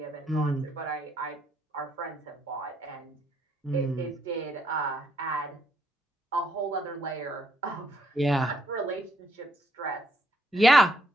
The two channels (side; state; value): both; normal; correlation 0.72